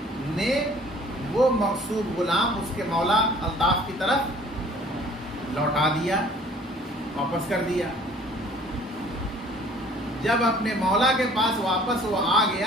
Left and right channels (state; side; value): normal; both; correlation 0.53